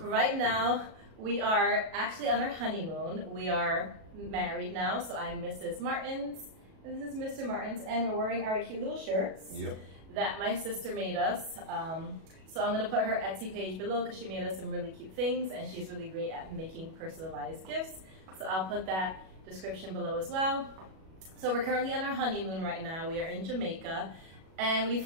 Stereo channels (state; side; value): late; left; 37 ms